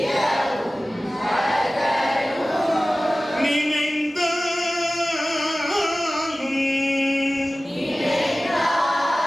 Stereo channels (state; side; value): normal; both; correlation 0.97